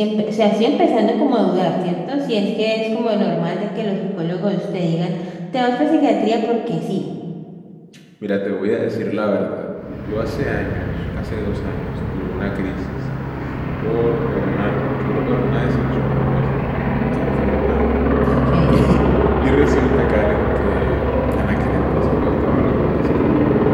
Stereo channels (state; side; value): identical; both; correlation 1.00